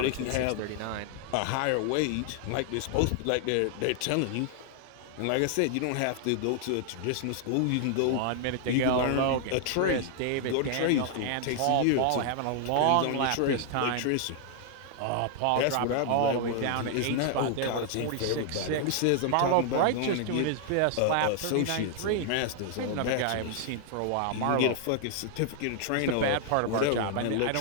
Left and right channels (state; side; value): different; both; correlation 0.00